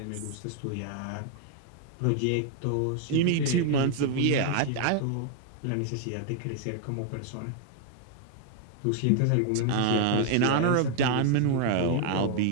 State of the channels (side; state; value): both; different; correlation 0.00